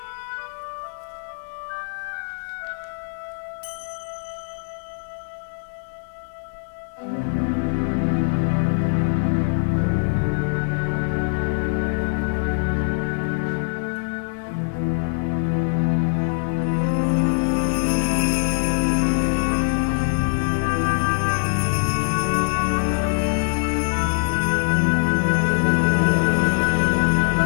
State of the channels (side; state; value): right; silent; digital silence